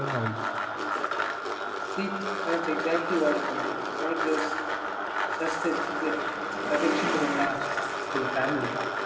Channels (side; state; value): both; identical; correlation 1.00